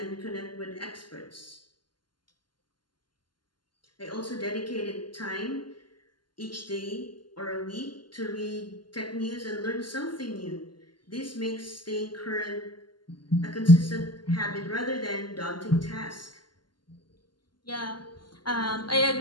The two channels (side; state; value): right; late; 0.71 ms